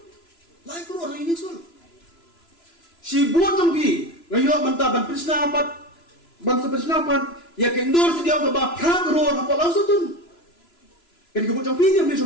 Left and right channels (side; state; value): right; late; 3.0 ms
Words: lain keluar yang sul si buat tempi ngayo mentah ban persnapat ban persnapat ya kendor sedia ke bakal keluar apa langsung tu. Kan kebut jam pi dia